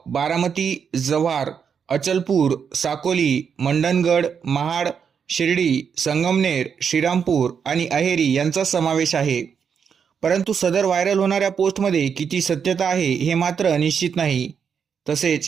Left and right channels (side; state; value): left; quieter; 6.9 dB